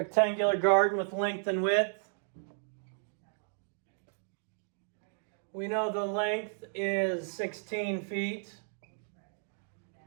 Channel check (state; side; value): silent; left; digital silence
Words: garden with length and width. We know the length is 16 feet.